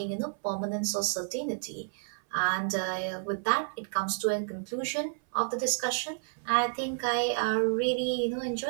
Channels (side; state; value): left; silent; 57 dB below the other